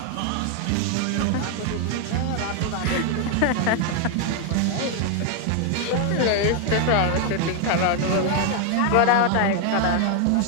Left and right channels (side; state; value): both; different; correlation 0.00